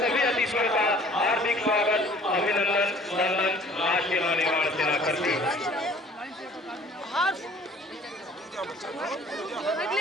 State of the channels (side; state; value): both; normal; correlation 0.52